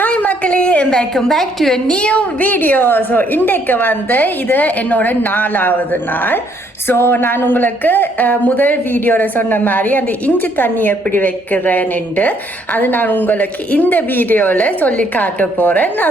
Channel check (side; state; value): both; normal; correlation 0.67